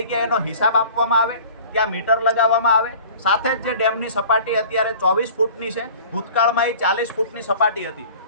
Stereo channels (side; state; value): both; inverted; correlation -0.45